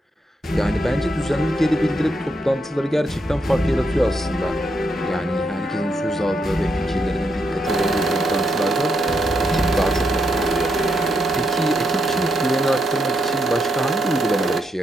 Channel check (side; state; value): both; normal; correlation 0.79